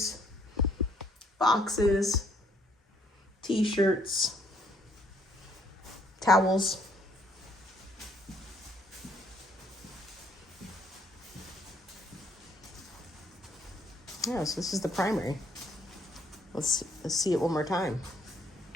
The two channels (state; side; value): normal; both; correlation 0.66